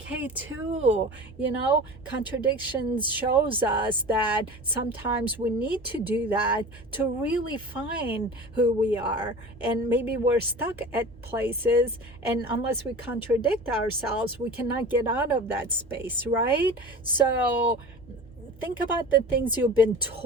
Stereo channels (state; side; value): normal; both; correlation 0.36